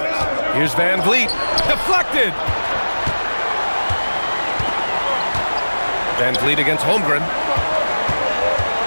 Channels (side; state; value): both; inverted; correlation -1.00